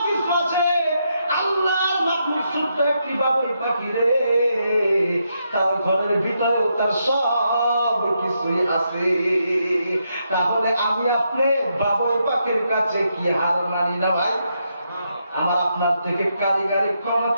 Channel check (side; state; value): both; inverted; correlation -0.80